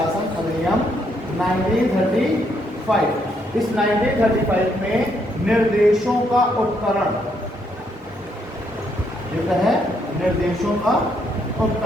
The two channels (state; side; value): normal; both; correlation 0.74